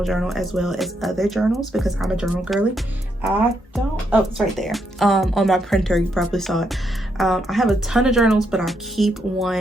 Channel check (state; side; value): normal; both; correlation 0.78